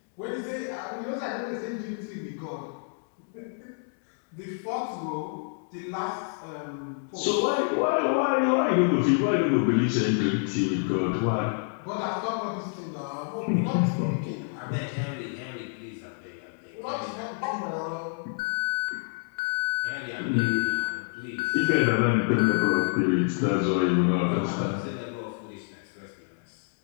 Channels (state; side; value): silent; right; 59 dB below the other